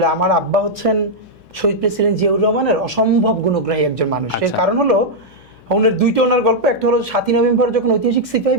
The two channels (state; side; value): noise; left; hum, 28 dB below the sound